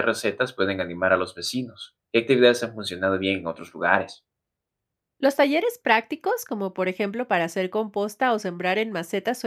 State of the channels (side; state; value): both; identical; correlation 1.00